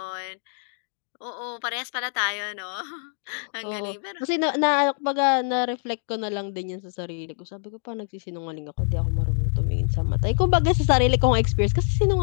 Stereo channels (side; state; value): right; silent; digital silence